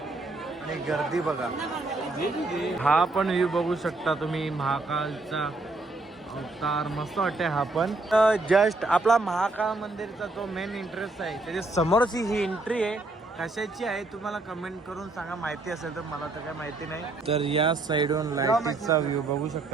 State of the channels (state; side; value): quieter; left; 3.1 dB